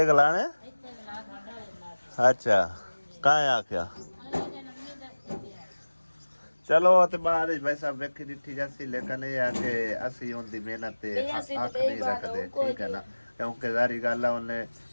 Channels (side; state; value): both; inverted; correlation -1.00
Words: ਗਲਾਣੇ। ਅੱਛਾ ਕਾਹ ਆਖਿਆ चलो तो बाद भाई साहब वेखी डिठी जैसी, लेकिन ये है कि असी उनकी मेहनत ते अख नहीं रखते, ठीक है ना। क्योंकि जारी गल है उन्हें